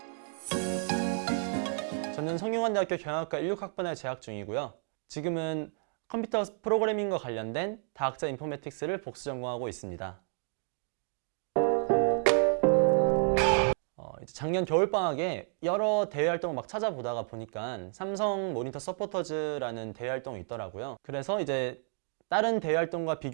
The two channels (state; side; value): silent; left; 57 dB below the other